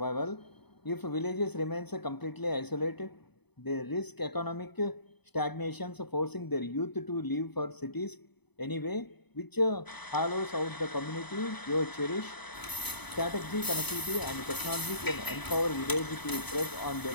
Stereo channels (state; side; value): late; right; 0.99 ms